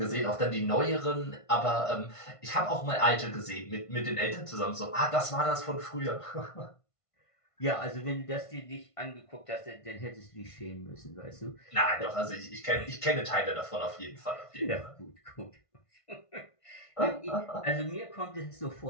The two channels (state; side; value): late; right; 1.5 ms